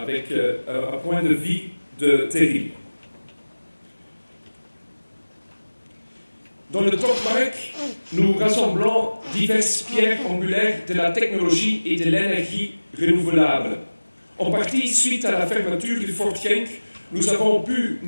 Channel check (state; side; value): inverted; both; correlation -1.00